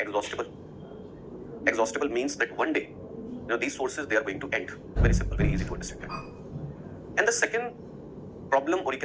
Exhaustible means that one day, these sources, they are going to end. Very simple, very easy to understand. And the second problem, or you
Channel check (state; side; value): identical; both; correlation 1.00